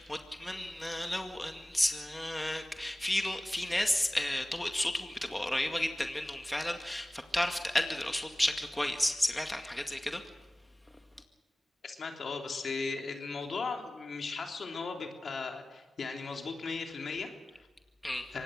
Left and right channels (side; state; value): both; normal; correlation 0.97